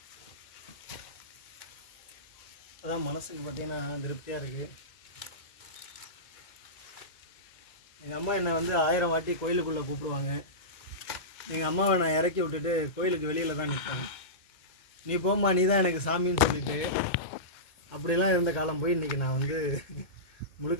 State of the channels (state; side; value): late; right; 2.2 ms